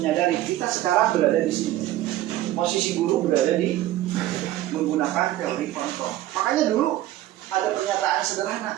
kita sekarang berada di sini. Posisi guru berada di menggunakan teori kontrol. Makanya dulu ada pernyataan sederhana.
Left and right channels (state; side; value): quieter; left; 14.7 dB